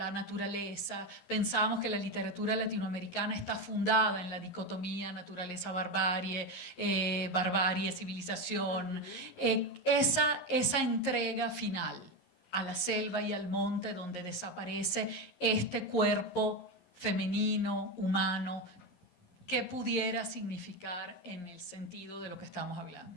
naturaleza. Pensábamos que la literatura latinoamericana está fundada en la dicotomía naturaleza-barbarie, barbarie-civilización. Esa entrega final a la selva y al monte donde desaparece este cuerpo femenino, humano, ¿qué pudiera significar en el sentido de lo que estamos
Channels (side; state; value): right; late; 11 ms